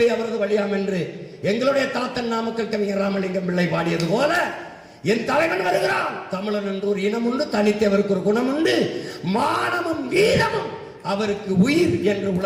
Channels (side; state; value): both; identical; correlation 1.00